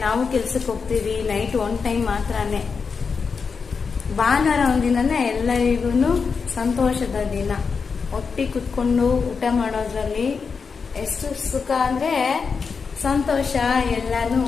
ನಾವು ಕೆಲ್ಸಕ್ಕೆ ಹೋಗ್ತೀವಿ. ನೈಟ್ ಒನ್ ಟೈಮ್ ಮಾತ್ರನೇ. ಭಾನುವಾರ ಒಂದಿನನೇ ಎಲ್ಲರಿಗೂ ಸಂತೋಷದ ದಿನ. ಒಟ್ಟಿಗೆ ಕುತ್ಕೊಂಡು ಊಟ ಮಾಡೋದ್ರಲ್ಲಿ ಎಷ್ಟು ಸುಖ ಅಂದ್ರೆ ಸಂತೋಷ. ಎಲ್ಲಾನು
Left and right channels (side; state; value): right; quieter; 5.4 dB